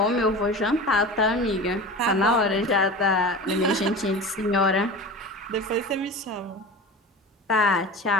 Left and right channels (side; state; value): both; normal; correlation 0.33